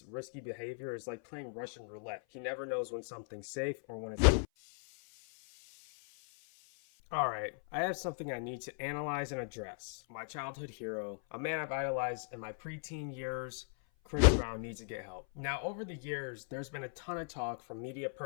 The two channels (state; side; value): silent; right; 53 dB below the other